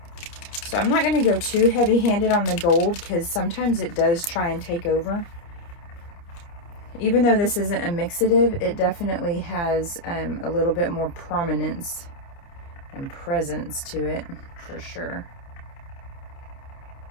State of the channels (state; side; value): late; right; 29 ms